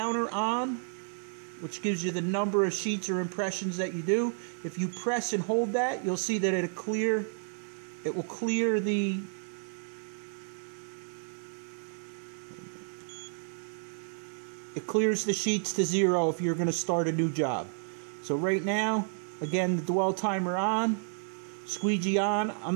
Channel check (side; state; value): left; silent; 57 dB below the other